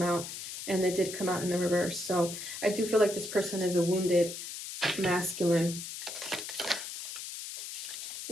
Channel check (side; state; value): left; noise; hiss, 8 dB below the sound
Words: out, and it did come out in the reverse. So I do feel like this person is a wounded masculine.